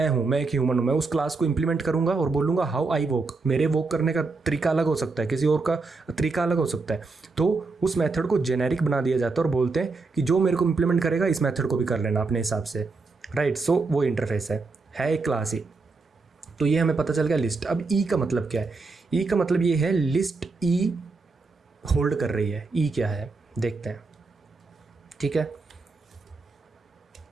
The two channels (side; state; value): left; quieter; 4.0 dB